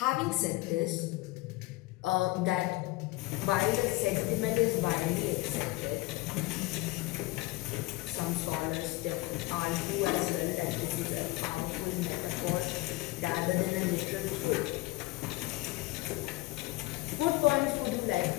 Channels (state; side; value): quieter; right; 20.1 dB